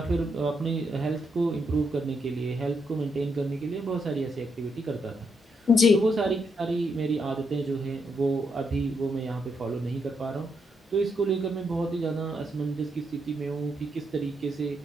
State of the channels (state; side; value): normal; both; correlation 0.79